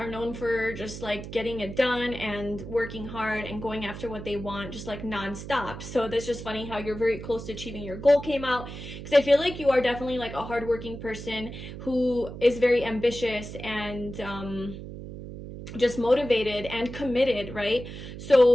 known for just like getting it done and working hard and going after what they want, just like nonstop. So that's just funny how you're very close to achieving your goal came out, because I feel like you are definitely like a hardworking person who is very ambitious and just motivated and committed, right?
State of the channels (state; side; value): noise; right; hum, 10 dB below the sound